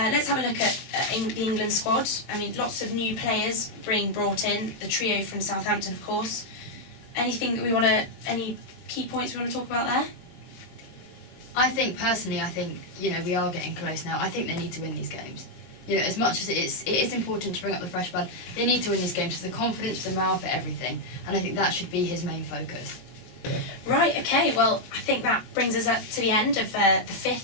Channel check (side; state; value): right; late; 22 ms